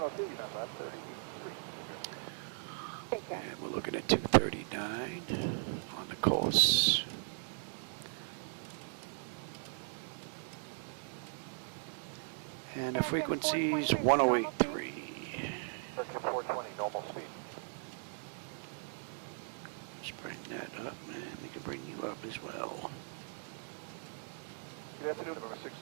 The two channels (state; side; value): silent; left; digital silence